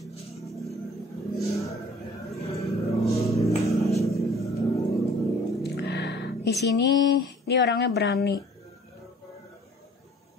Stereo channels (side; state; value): both; normal; correlation 0.52